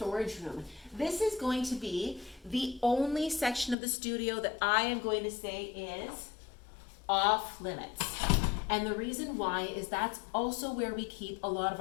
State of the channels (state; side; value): drops out; right; at 3.8 s